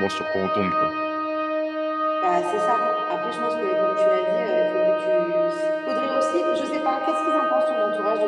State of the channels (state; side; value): identical; both; correlation 1.00